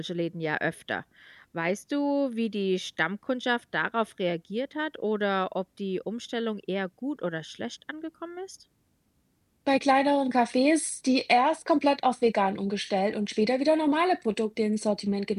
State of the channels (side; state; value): both; identical; correlation 1.00